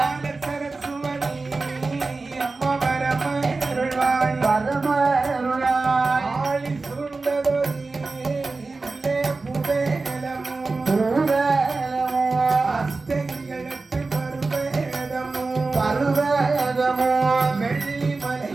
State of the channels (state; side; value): quieter; left; 3.7 dB